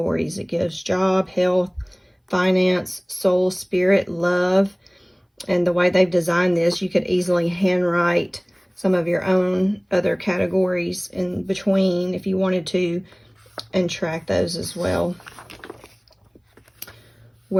It gives job, health, finance, soul, spirit, love. And the way they've designed this, you could easily handwrite some of your own other categories in between if you wanted to, and track those as well.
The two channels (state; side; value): identical; both; correlation 1.00